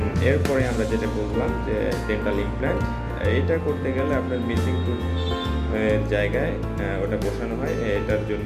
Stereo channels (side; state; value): both; identical; correlation 1.00